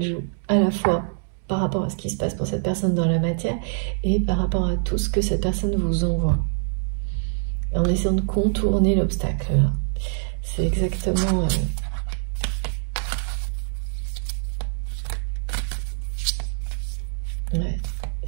joue, à la fois par rapport à ce qui se passe pour cette personne dans la matière et par rapport à tout ce que cette personne vous envoie. En essayant de contourner l'obstacle. C'est exactement... ouais.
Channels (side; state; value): left; silent; digital silence